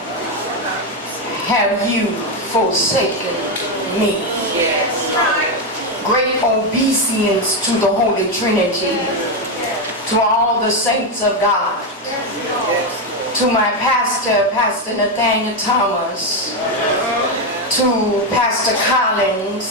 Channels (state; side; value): normal; both; correlation 0.07